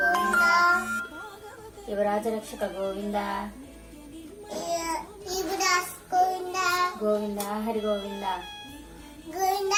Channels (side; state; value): both; identical; correlation 1.00